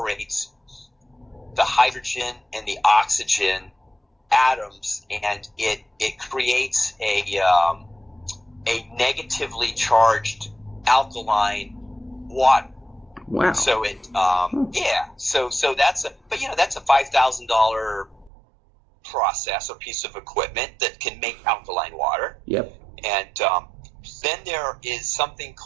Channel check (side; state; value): left; drops out; at 18.3 s